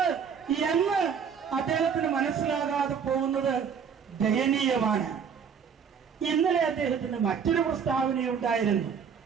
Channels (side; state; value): left; quieter; 6.9 dB